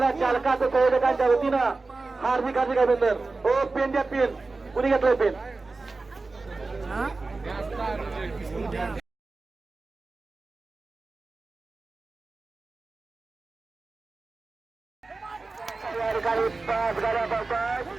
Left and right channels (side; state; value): left; quieter; 3.6 dB